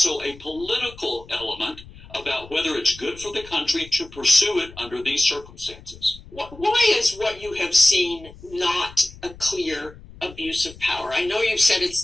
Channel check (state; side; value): noise; left; rumble, 19 dB below the sound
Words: a political element about whether it's good for the country to pursue it under these circumstances. Why is what you have seen not a clear abuse of power? I know you've said